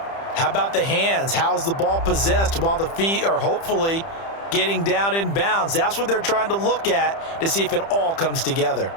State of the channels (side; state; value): right; late; 30 ms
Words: How about the hands? How's the ball possessed while the feet are hopefully getting down in bounds? That's what they're trying to look at to see if it all comes together.